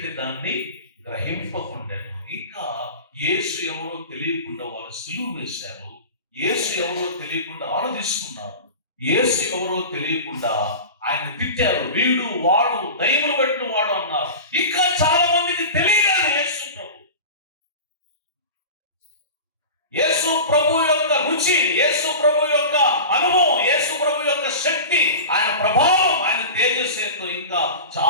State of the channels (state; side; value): inverted; both; correlation -0.32